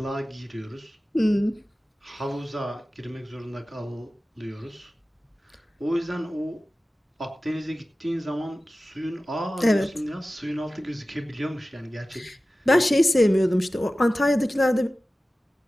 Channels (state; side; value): normal; both; correlation 0.96